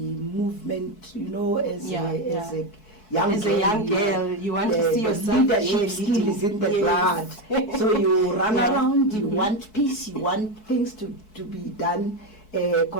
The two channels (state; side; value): late; right; 4.6 ms